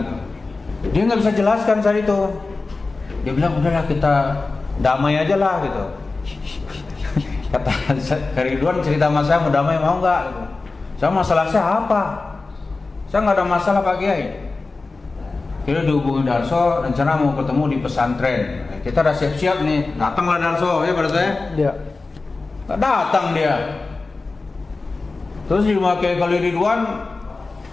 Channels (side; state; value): right; quieter; 3.7 dB